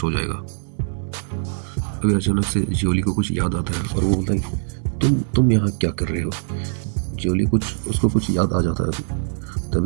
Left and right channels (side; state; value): left; silent; digital silence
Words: हो जाएगा। अभी अचानक से जियोली को कुछ याद आता है और वो बोलता है तुम यहाँ क्या कर रहे हो। जियोली उसको कुछ याद आ जाता है अभी।